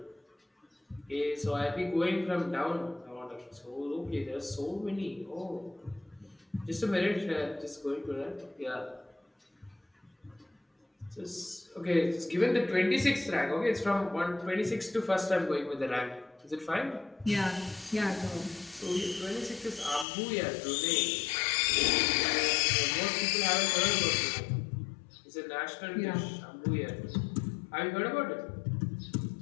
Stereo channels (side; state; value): right; drops out; at 20.1 s